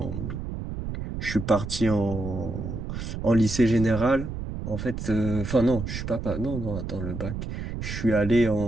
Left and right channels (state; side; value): noise; right; rumble, 6 dB below the sound